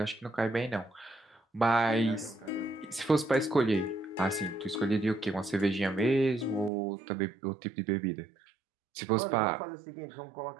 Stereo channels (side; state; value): left; drops out; at 6.7 s